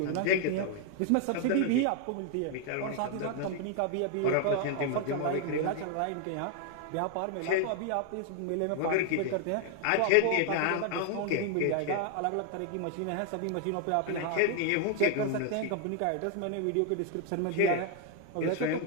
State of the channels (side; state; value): both; different; correlation 0.00